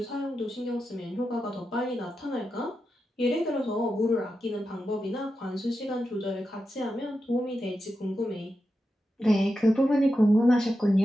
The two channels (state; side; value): normal; both; correlation 0.89